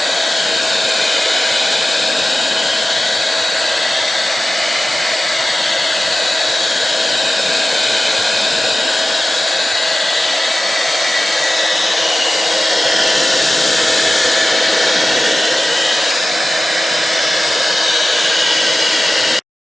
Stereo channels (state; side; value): normal; both; correlation 0.95